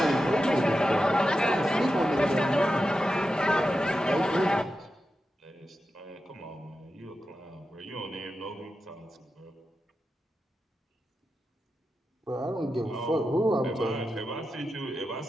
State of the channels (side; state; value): both; normal; correlation 0.90